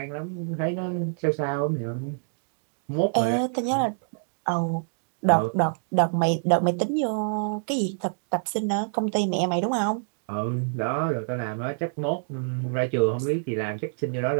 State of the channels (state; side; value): silent; left; digital silence